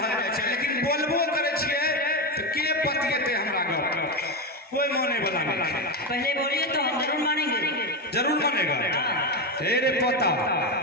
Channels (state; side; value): normal; both; correlation 0.13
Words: जाए छै, लेकिन बोलबो करे छिए तो के पतिएते हमरा गप कोई माने वाला नहीं। पहले बोलिए तो हम जरूर मानेंगे। जरूर मानेगा। हे रे पता